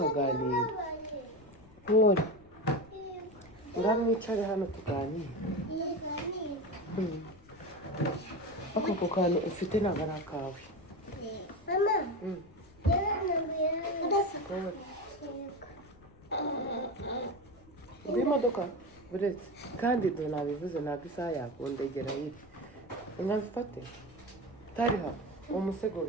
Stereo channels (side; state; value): left; noise; rumble, 24 dB below the sound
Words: Pole. Ngaho mwicare hano tuganire. Ako kantu ufite ntabwo ari akawe. Mama. Imodoka buretse kandi do nabivuze ntabwo isaha yakundegera iri. Nkabifate. Tariha umusego